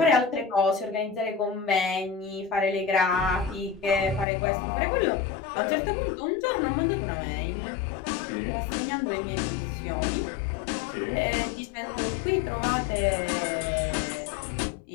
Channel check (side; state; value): right; drops out; at 4.2 s